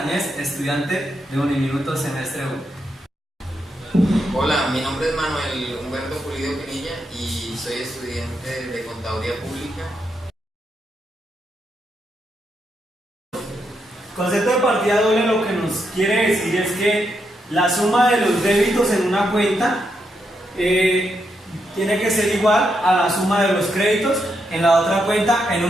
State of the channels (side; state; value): both; normal; correlation 0.81